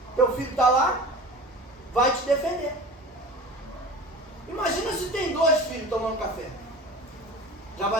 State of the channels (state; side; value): normal; both; correlation 0.37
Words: Teu filho está lá, vai te defender. Imagina se tem 2 filhos tomando café. Já